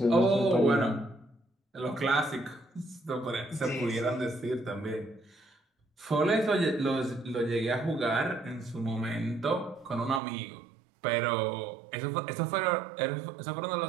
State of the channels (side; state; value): left; drops out; at 10.2 s